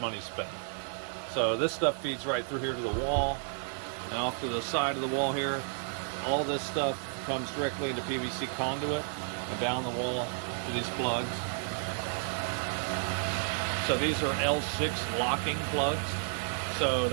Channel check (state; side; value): silent; left; digital silence